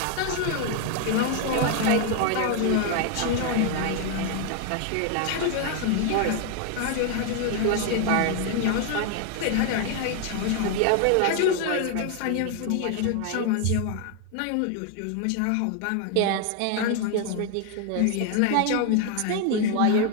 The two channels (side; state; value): both; different; correlation 0.01